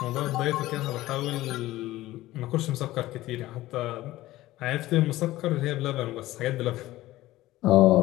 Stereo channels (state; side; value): quieter; right; 16.6 dB